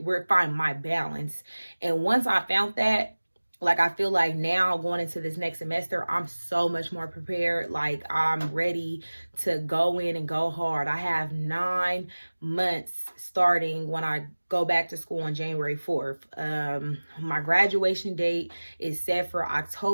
find my balance. And once I found that, like, I feel like now going into this next semester, I'm so much more prepared. Like, I'm ready to go in and go hard. I have 9 months starting when I go back to school on January 4th. My graduation date is set for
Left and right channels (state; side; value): inverted; both; correlation -1.00